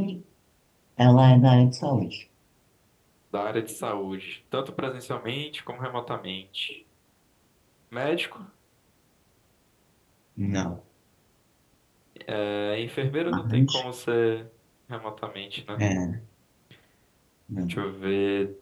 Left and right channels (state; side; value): identical; both; correlation 1.00